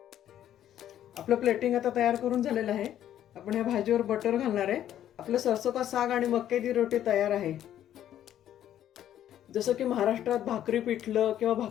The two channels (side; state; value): right; quieter; 11.2 dB